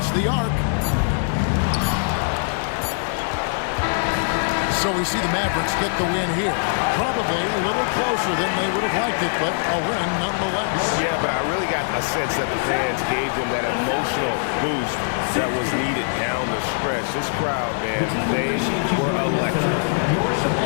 the arc. So we see the Mavericks get the win here. Probably a little closer than they would have liked it, but a win nonetheless. Yeah, but I really got a sense that the fans gave them that emotional boost that was needed down the stretch. This crowd, man, they were electric.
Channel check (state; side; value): silent; right; 64 dB below the other